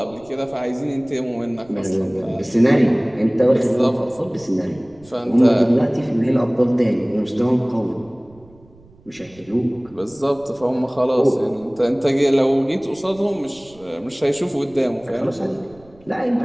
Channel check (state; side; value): noise; right; rumble, 27 dB below the sound